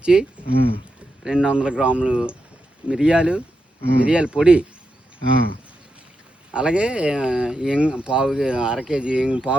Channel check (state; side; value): normal; both; correlation 0.86